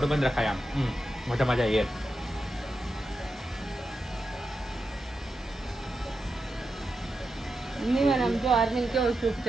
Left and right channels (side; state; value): both; normal; correlation 0.88